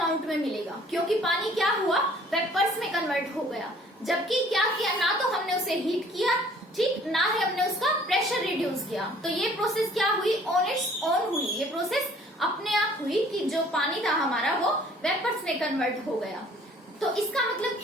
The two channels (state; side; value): normal; both; correlation 0.55